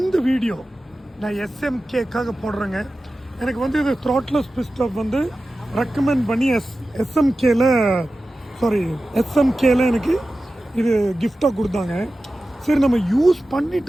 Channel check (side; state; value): both; normal; correlation 0.94